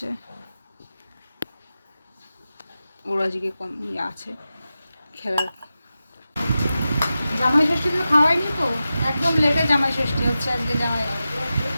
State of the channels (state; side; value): inverted; both; correlation -0.93